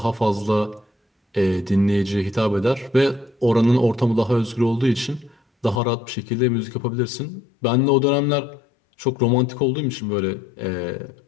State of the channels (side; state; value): right; drops out; at 5.8 s